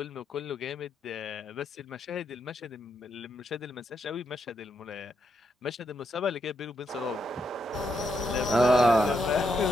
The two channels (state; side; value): normal; both; correlation 0.80